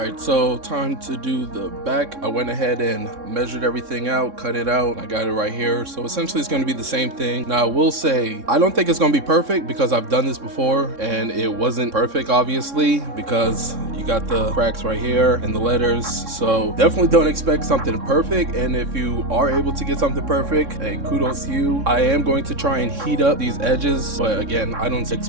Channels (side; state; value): left; late; 3.6 ms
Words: so time to do the back. I went ahead and measured everything out, cut it out. I got it right here. So essentially it's going to be the same thing. Now I will say, I don't think it's going to be perfect because I've done this before and it wasn't perfect, obviously, because you got the cracks right here and the letters. So definitely don't expect something perfect. And if you are able to get something perfect, hey, kudos to you. I am going to try and heat up these edges, but again, I don't